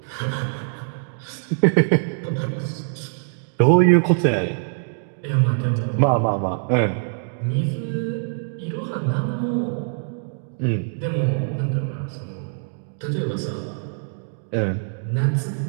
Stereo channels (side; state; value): left; silent; 63 dB below the other